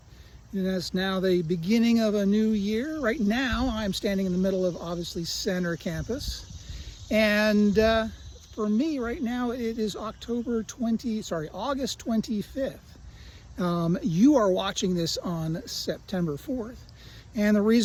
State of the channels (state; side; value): identical; both; correlation 1.00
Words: And it's now the beginning of a new year. Right now, I'm standing in the middle of, obviously, Center Campus. And for me, right now, it is August 25th. You are watching this on September 4th. And the